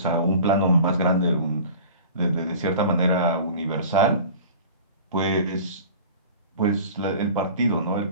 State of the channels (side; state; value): both; inverted; correlation -0.40